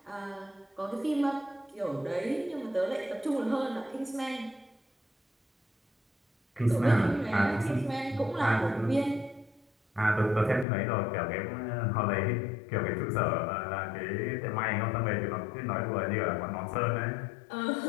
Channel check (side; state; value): right; drops out; at 10.7 s